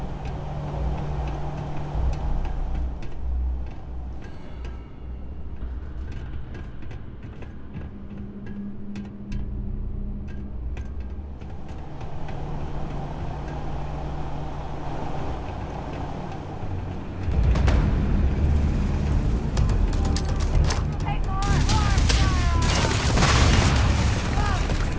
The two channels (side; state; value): both; identical; correlation 1.00